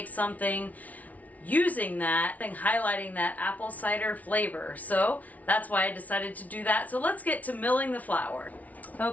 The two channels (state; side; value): late; right; 0.072 ms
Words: something using that and highlighting that apple cider flavor. So that's why I decided to do that. So let's get to milling the flour.